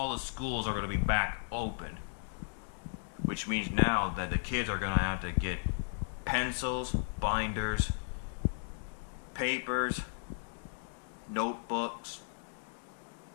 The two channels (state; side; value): silent; right; digital silence